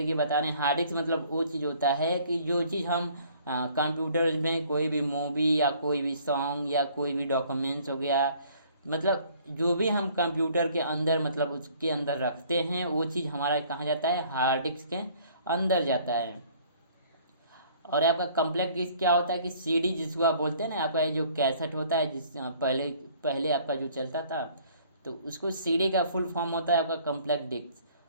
बताने। हार्ड डिस्क मतलब वो चीज़ होता है कि जो चीज़ हम कंप्यूटर में कोई भी मूवी या कोई भी सॉन्ग या कोई भी डॉक्यूमेंट्स हो गया, मतलब जो भी हम कंप्यूटर के अंदर मतलब उसके अंदर रखते हैं वो चीज़ हमारा कहाँ जाता है, हार्ड डिस्क के अंदर जाता है। और आपका कॉम्पैक्ट डिस्क क्या होता है कि सीडी जिसको आप बोलते हैं ना, आपका जो कैसेट होता है जिस पहले आपका जो चलता था तो उसको सीडी का फुल फॉर्म होता है आपका कॉम्पैक्ट डिस्क।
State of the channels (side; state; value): both; inverted; correlation -0.57